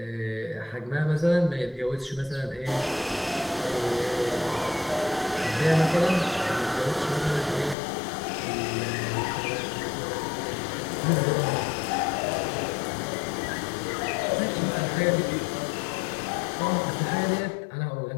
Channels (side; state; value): right; drops out; at 7.8 s